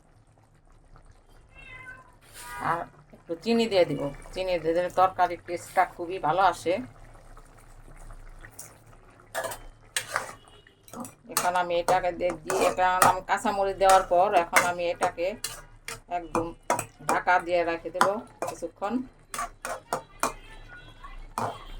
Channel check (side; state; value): both; identical; correlation 1.00